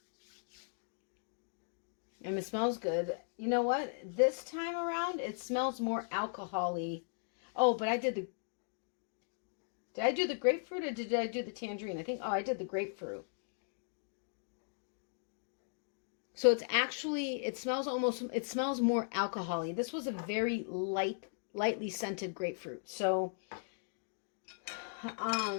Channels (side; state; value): right; silent; digital silence